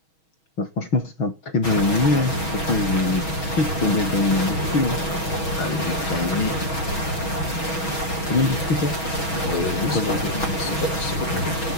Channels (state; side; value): late; right; 6.3 ms